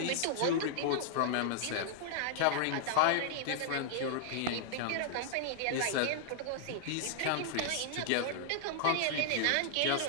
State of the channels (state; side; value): different; both; correlation 0.00